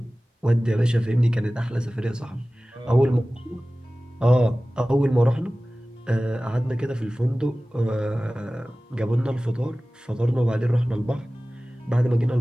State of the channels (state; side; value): normal; both; correlation 0.97